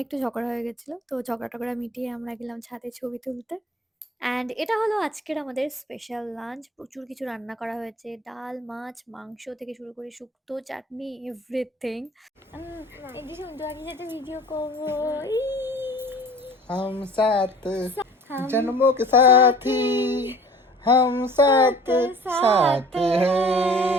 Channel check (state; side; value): normal; both; correlation 0.47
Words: একটু ঝগড়া হয়ে গেছিল, তো ঝগড়া মিটিয়ে আমরা গেলাম ছাদে ছবি তুলতে। অ্যান্ড এটা হলো আজকের আমাদের স্পেশাল লাঞ্চ। প্রচুর কিছু রান্না করা হয়েছে, ডাল, মাছ, মাংস থেকে শুরু করে শুক্তো, চাটনি, এভরিথিং। এই যে সুন্দর সাথে ভিডিও করবো। हम साथ जन्मों के साथी, हम साथ साथ